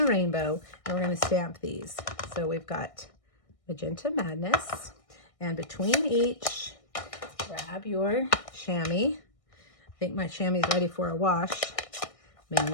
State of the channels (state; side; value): late; right; 1.6 ms